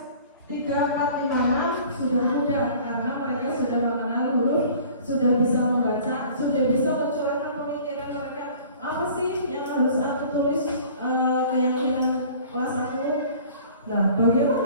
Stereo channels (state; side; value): inverted; both; correlation -0.48